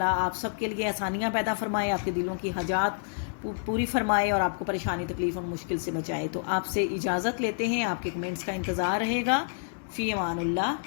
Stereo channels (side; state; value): right; silent; digital silence